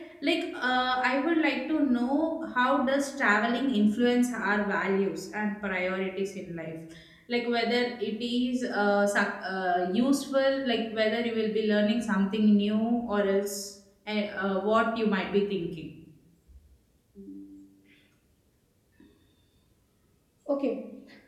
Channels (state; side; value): identical; both; correlation 1.00